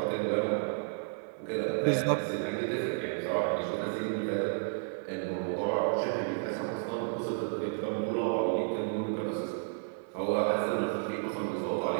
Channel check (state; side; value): silent; left; digital silence